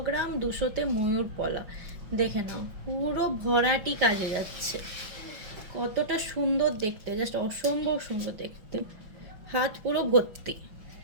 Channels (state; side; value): late; left; 5.1 ms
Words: গ্রাম 200-তে ময়ূর পলা, দেখে নাও পুরো ভরাটি কাজে যাচ্ছে, কতটা সুন্দর দেখতে, জাস্ট অসম্ভব সুন্দর দেখতে, হাত পুরো ভর্তি,